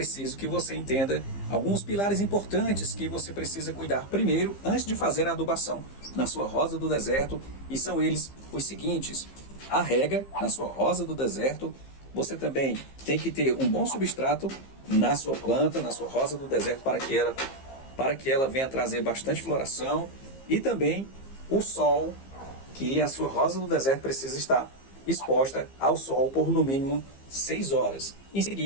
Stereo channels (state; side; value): late; right; 15 ms